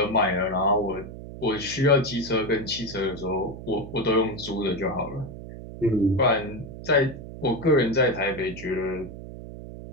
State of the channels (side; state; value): right; noise; hum, 12 dB below the sound